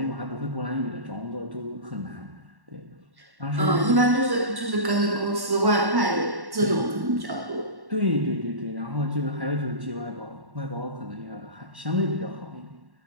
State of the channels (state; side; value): late; left; 1.1 ms